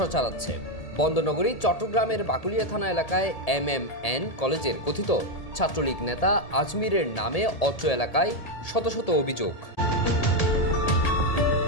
চালাচ্ছে। বন্দরনগরী চট্টগ্রামের বাকুলিয়া থানা এলাকায় MMN কলেজের কথিত ছাত্রলীগ নেতা আজমিরের নামে অত্র এলাকায় শত শত অভিযোগ।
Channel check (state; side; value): late; right; 1.8 ms